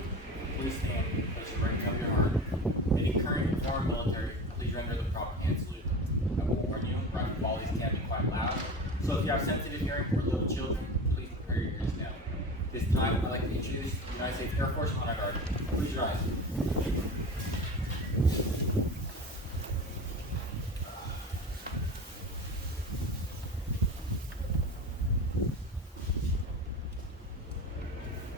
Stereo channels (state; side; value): normal; both; correlation 0.31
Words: please stand as you bring up your arm. Any current and former military, please render the proper hand salute. I will warn you, rifle volleys can be quite loud, so if you have sensitive hearing or little children, please prepare your ears now. This time, I'd like to introduce the United States Air Force Honor Guard. Please rise.